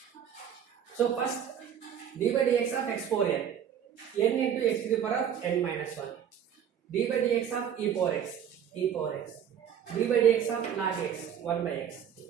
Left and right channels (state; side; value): quieter; left; 8.9 dB